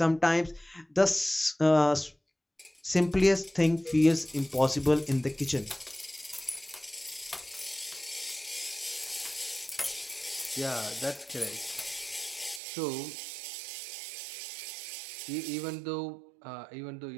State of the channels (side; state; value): left; drops out; at 12.6 s